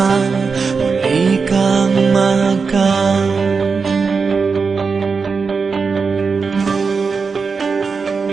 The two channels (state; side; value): quieter; left; 5.0 dB